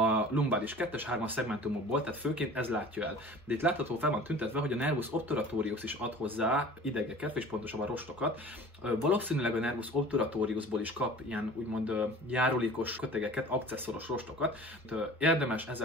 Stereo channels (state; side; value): normal; both; correlation 0.42